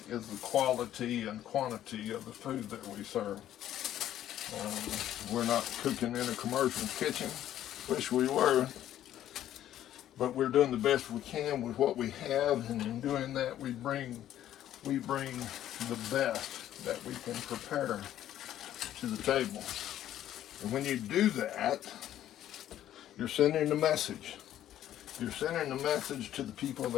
the quality and quantity of the food that we serve. We're not cooking in a commercial kitchen. Wish we were. But we're doing the best we can with what we have, and in doing that we bring the best that we can prepare to the table. And when you do that, you're sending a message. You're sending a message to the people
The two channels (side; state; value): right; quieter; 12.0 dB